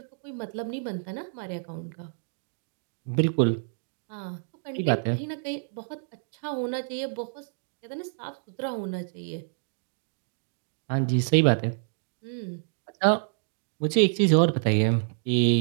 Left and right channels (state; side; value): silent; left; digital silence